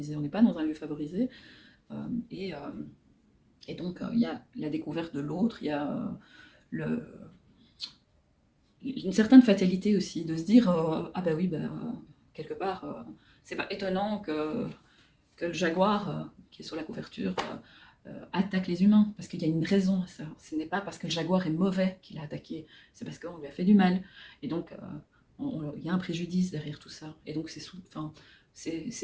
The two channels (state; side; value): identical; both; correlation 1.00